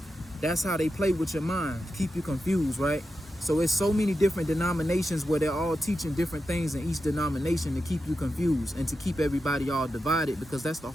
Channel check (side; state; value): both; normal; correlation 0.90